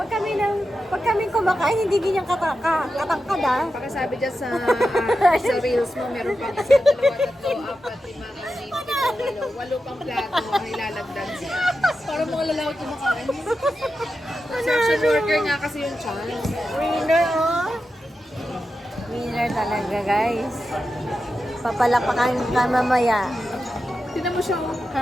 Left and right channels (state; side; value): normal; both; correlation 0.90